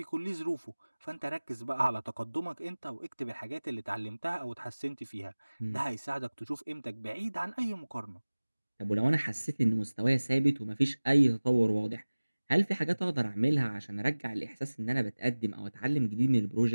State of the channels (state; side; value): inverted; both; correlation -1.00